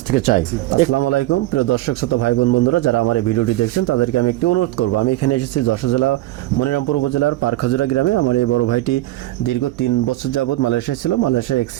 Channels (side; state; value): left; quieter; 16.6 dB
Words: থেকে চাই। আসসালামু আলাইকুম প্রিয় দর্শক শ্রোতা ভাই বোন বন্ধুরা, যারা আমার এই ভিডিওটি দেখছেন তাদেরকে আমি একটি অনুরোধ করব। আমি এখানে এসেছি যশোর জেলা মনিরামপুর উপজেলার পারখাজুরা গ্রামে। আমার এই বড় ভাইটি দীর্ঘ 3 বছর যাবৎ মালয়েশিয়া ছিল। মালয়েশিয়া